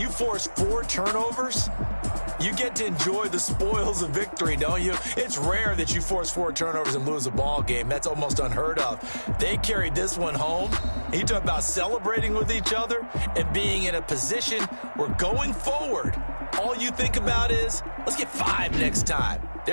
you force 4 turnovers, you get to enjoy the spoils of victory, don't you? It's rare that you force 4 turnovers and lose a ball game. That's almost unheard of. They carried this one home. You talk about celebrating with each other and being in a position where going forward, all you think about is, let's get 5 next time.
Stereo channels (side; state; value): both; inverted; correlation -1.00